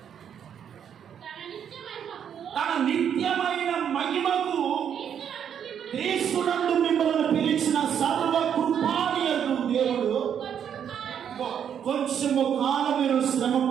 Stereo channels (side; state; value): left; quieter; 8.6 dB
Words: తన నిత్యమైన మహిమకు క్రీస్తునందు మిమ్మల్ని పిలిచిన సర్వ కృపానియగు దేవుడు కొంచెము కాలం మీరు శ్రమ